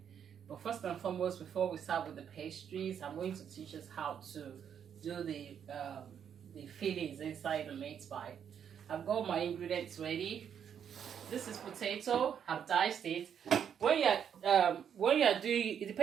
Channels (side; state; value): left; quieter; 8.3 dB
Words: But first and foremost, before we start with the pastries, I'm going to teach us how to do the fillings inside the meat pie. I've got my ingredients ready. This is potato. I've diced it. When you're doing, it